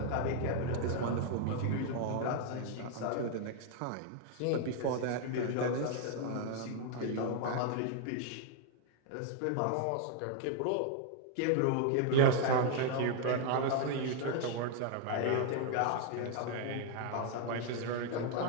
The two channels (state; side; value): different; both; correlation 0.00